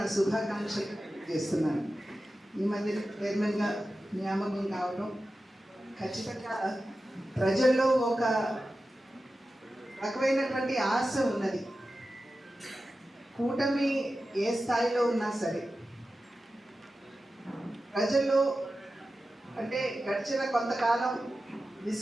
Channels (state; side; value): normal; both; correlation 0.93